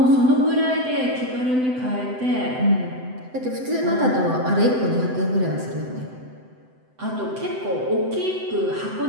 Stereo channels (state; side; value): late; left; 7.9 ms